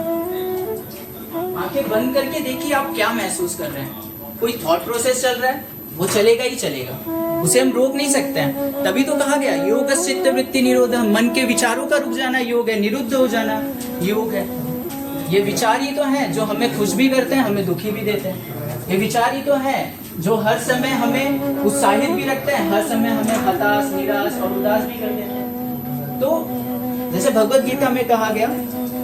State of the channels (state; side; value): identical; both; correlation 1.00